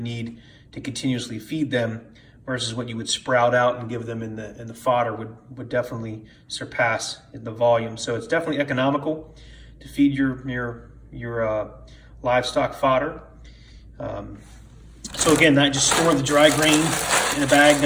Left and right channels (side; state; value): both; identical; correlation 1.00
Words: need to continuously feed them versus what you would sprout out and give them in the fodder would definitely surpass the volume. So it's definitely economical to feed your livestock fodder. So again, I just store the dry grain in a bag